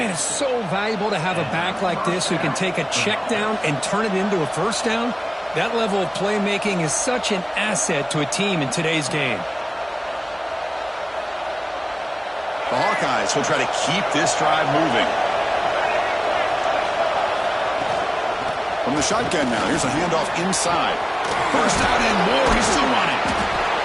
it's so valuable to have a back like this who can take a check down and turn it into a first down. That level of playmaking is such an asset to a team in today's game. The Hawkeyes will try to keep this drive moving. From the shotgun now, here's a handoff inside. First down and more, he's still running.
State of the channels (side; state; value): both; identical; correlation 1.00